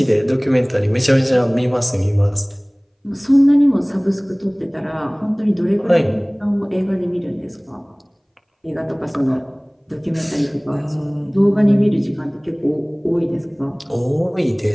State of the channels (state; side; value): identical; both; correlation 1.00